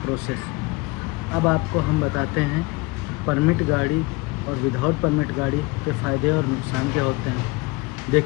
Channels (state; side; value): quieter; right; 24.3 dB